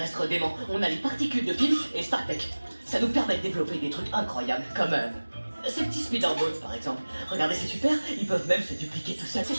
dément. On a les particules de PYM et StarTech. Ça nous permet de développer des trucs incroyables, comme Ces petits speederboats par exemple. Regardez, c'est super, ils peuvent même se dupliquer tout seuls. C'est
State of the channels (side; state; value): both; inverted; correlation -1.00